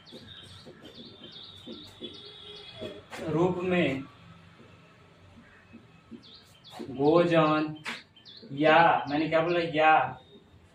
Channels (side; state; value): both; identical; correlation 1.00